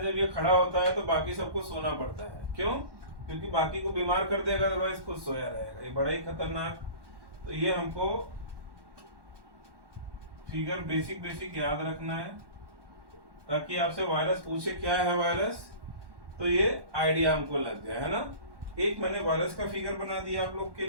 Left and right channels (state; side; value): late; left; 1.1 ms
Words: जब ये खड़ा होता है तो बाकी सबको सोना पड़ता है, क्यों? क्योंकि बाकी को बीमार कर देगा, अदरवाइज खुद सोया रहेगा। ये बड़ा ही खतरनाक। तो ये हमको फिगर बेसिक याद रखना है, ताकि आपसे वायरस पूछे क्या है वायरस, तो ये आइडिया हमको लग गया, है ना। एक मैंने वायरस का फिगर बना दिया आप लोग के